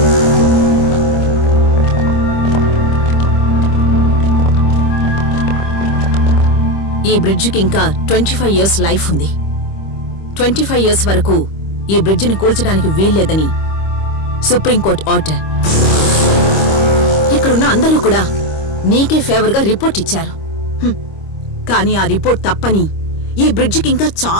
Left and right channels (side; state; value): right; late; 25 ms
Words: ఈ బ్రిడ్జికి ఇంకా 25 years లైఫ్ ఉంది. 25 years వరకు ఈ బ్రిడ్జిని కూల్చడానికి వీల్లేదని సుప్రీంకోర్టు ఆర్డర్. ఇక్కడున్న అందరూ కూడా నీకే ఫేవర్గా రిపోర్ట్ ఇచ్చారు. కానీ ఆ రిపోర్ట్ తప్పని, ఈ బ్రిడ్జికి ఇంకా